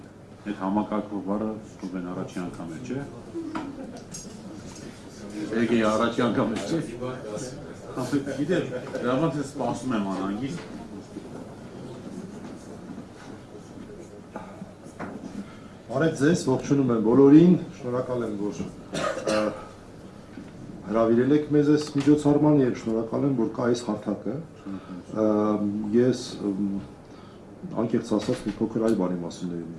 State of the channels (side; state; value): both; identical; correlation 1.00